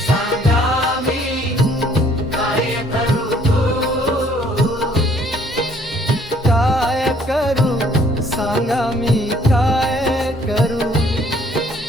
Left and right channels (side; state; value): both; normal; correlation 0.61